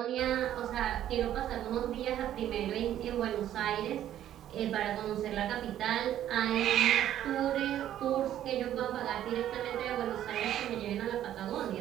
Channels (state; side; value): quieter; left; 11.6 dB